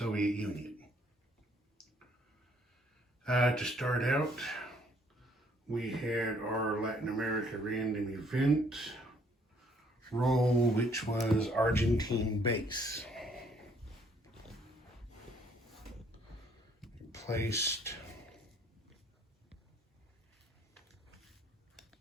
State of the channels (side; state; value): both; normal; correlation 0.64